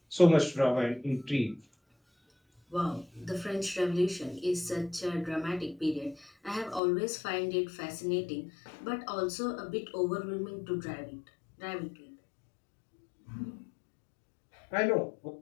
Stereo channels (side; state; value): right; drops out; at 6.8 s